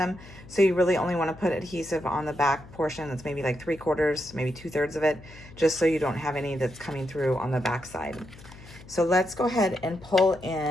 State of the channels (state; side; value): noise; left; hum, 19 dB below the sound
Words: So you really only want to put adhesive on the back portion. That's maybe like 3/4, maybe 2/3 of it, just so you don't have any that's coming through on the back side. So let's go ahead and pull